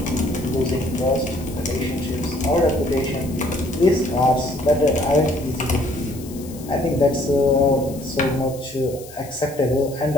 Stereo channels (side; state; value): left; noise; hiss, 18 dB below the sound